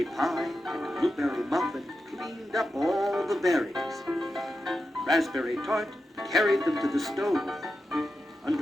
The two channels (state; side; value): normal; both; correlation 0.89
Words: Pie and Blueberry Muffin cleaned up all the berries. Raspberry Tart carried them to the stove.